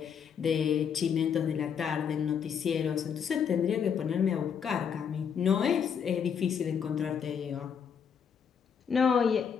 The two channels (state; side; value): quieter; right; 7.3 dB